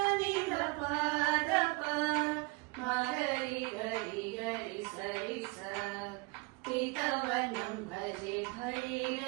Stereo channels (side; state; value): left; quieter; 27.5 dB